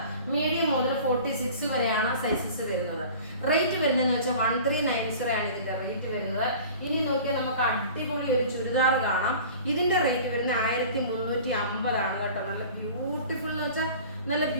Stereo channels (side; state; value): both; inverted; correlation -0.42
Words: മീഡിയം മുതൽ 46 വരെയാണ് സൈസസ് വരുന്നത്. റേറ്റ് വരുന്നതെന്ന് വെച്ചാൽ 1390 ആണ് ഇതിന്റെ റേറ്റ് വരുന്നത്. ഇനി നോക്കിയാൽ നമുക്ക് അടിപൊളി ഒരു ചുരിദാർ കാണാം. ഇതിന്റെ റേറ്റ് വരുന്നത് 1350 ആണ് കേട്ടോ. നല്ല ബ്യൂട്ടിഫുൾ എന്ന് വെച്ചാൽ നല്ല